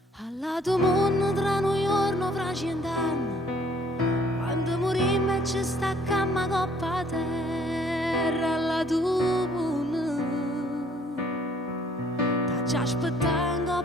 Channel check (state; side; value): normal; both; correlation 0.60